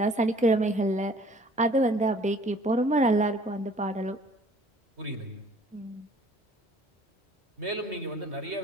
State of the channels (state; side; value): normal; both; correlation 0.54